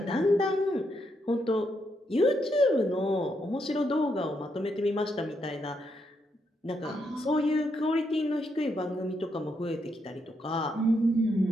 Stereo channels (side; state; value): both; normal; correlation 0.79